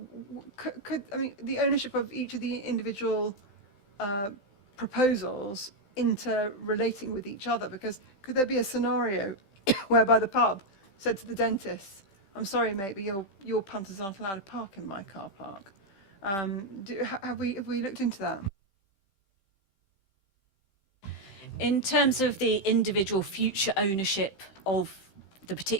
the ownership of each of the individual proposals interrelating with each other, because could there be a scenario whereby the pub said to the dentist, I'm sorry mate, but your punters aren't allowed to park in my car park? Have we looked into that? In terms of the individual future ownership of the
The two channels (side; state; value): right; late; 15 ms